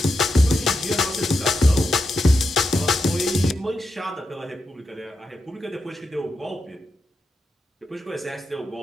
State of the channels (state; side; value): normal; both; correlation 0.86